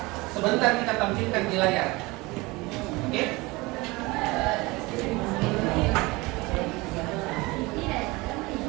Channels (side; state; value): left; quieter; 23.0 dB